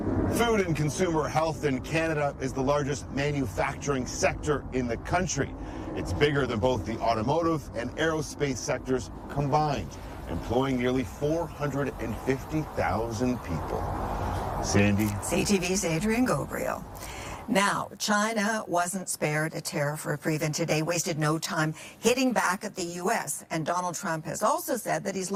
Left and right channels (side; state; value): both; identical; correlation 1.00